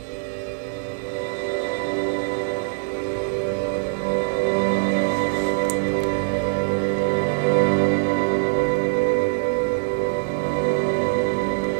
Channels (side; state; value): left; silent; digital silence